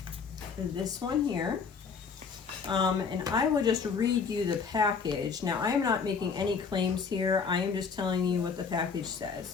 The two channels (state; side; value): quieter; right; 5.7 dB